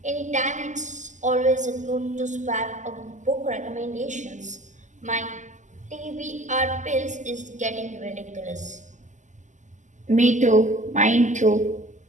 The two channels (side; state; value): left; late; 0.35 ms